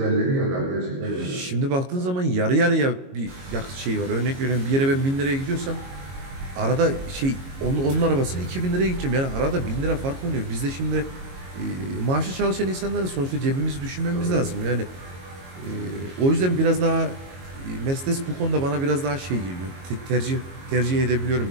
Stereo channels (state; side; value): late; left; 22 ms